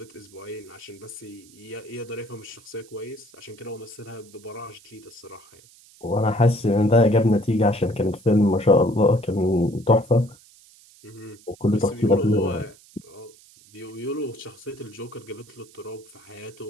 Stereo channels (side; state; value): right; noise; hiss, 25 dB below the sound